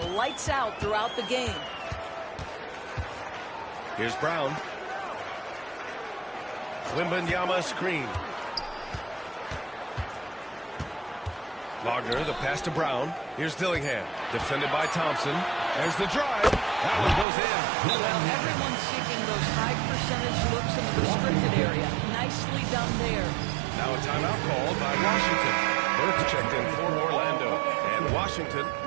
lights out throughout the game. Here's Brown. Wembanyama screen. Wagner, the pass to Brown. Here's Dillingham, defended by Thompson. There's the drive. That one goes in. Well, everyone's seeking those high percentage looks in the restricted area. Nicely done there. Now a timeout called by Washington. Burke checked in for Orlando. And Washington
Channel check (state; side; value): drops out; left; at 17.2 s